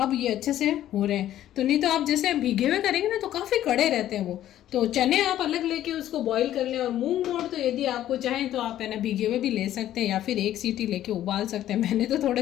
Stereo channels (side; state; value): right; quieter; 12.4 dB